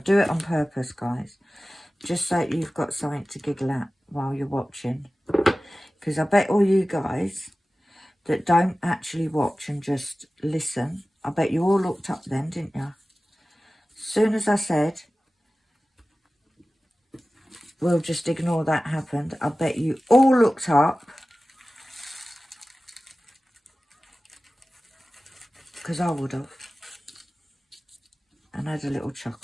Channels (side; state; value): both; normal; correlation 0.96